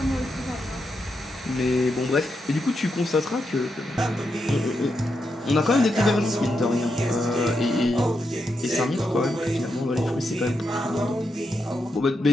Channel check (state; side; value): normal; both; correlation 0.84